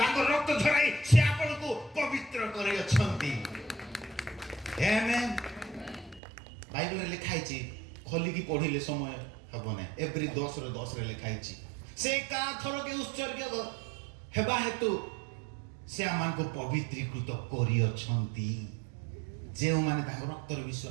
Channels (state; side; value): drops out; left; at 6.2 s